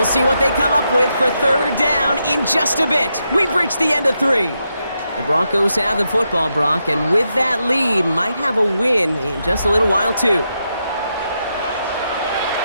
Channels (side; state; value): both; inverted; correlation -0.84